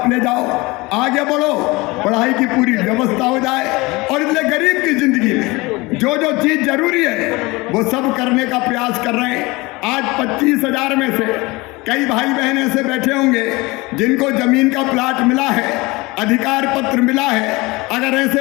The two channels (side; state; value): right; quieter; 23.2 dB